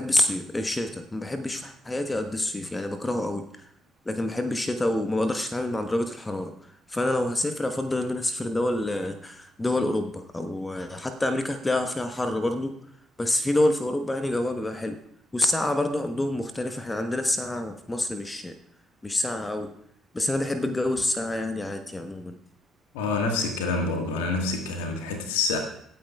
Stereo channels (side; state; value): both; normal; correlation 0.82